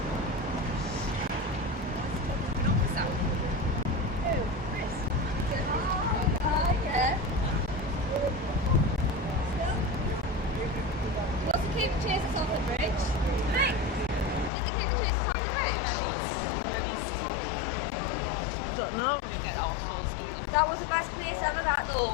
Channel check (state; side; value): drops out; right; at 14.5 s